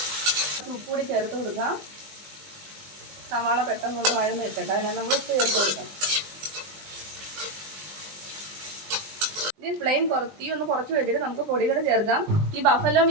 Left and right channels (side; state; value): left; late; 20 ms